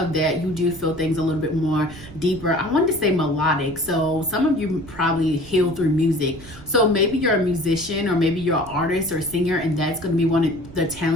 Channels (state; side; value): noise; right; rumble, 17 dB below the sound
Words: that, you do feel things a little bit more deeper. I wanted to say melodic. So some of you probably heal through music. So maybe you're a musician, or maybe you're an artist or a singer, and that's going to be one of the